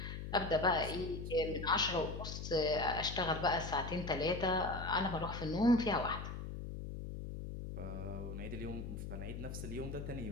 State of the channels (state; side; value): noise; left; hum, 7 dB below the sound